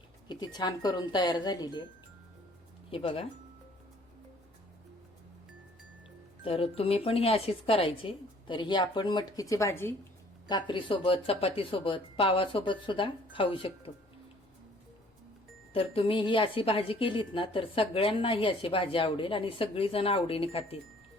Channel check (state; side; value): normal; both; correlation 0.57